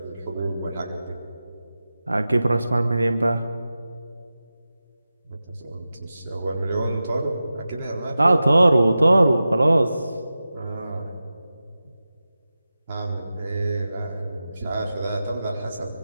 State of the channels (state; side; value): inverted; both; correlation -0.94